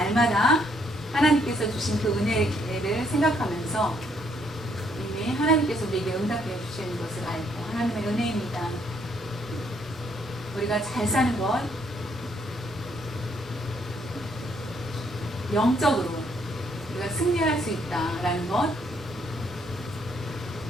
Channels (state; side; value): normal; both; correlation 0.70